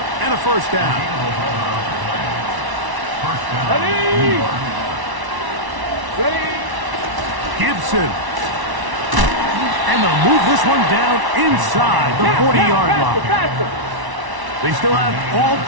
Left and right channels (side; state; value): left; late; 1.1 ms